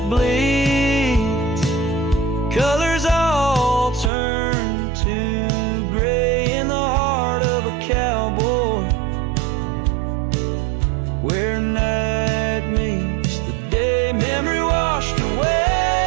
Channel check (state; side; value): drops out; left; at 4.1 s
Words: bleeds, colors all turn to gray in the heart of a cowboy, where night meets the day. Memory washed away